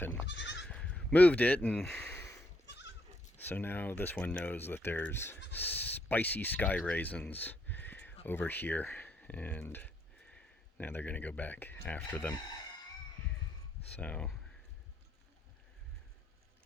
and moved it, and so now this one knows that there's spicy sky raisins over here, and now they're gonna go back after them. So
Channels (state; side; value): normal; both; correlation 0.75